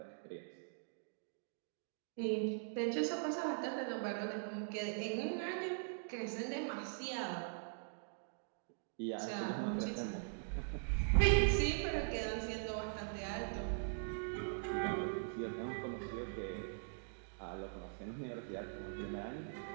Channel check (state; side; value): silent; left; digital silence